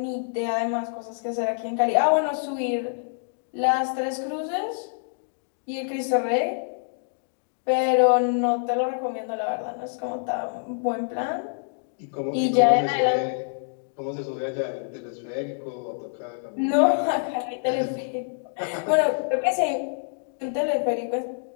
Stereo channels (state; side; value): silent; right; digital silence